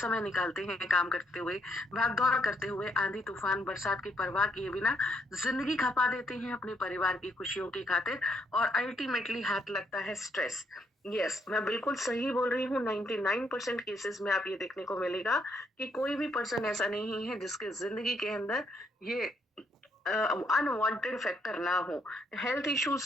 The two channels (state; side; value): normal; both; correlation 0.74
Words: निकालते हैं काम करते हुए, भाग दौड़ करते हुए, आंधी तूफान बरसात की परवाह किए बिना जिंदगी खपा देते हैं अपने परिवार की खुशियों की खातिर, और अल्टीमेटली हाथ लगता है स्ट्रेस। यस, मैं बिल्कुल सही बोल रही हूँ। 99% केसेस में आप ये देखने को मिलेगा कि कोई भी पर्सन ऐसा नहीं है जिसके जिंदगी के अंदर ये अनवांटेड फैक्टर ना हो, हेल्थ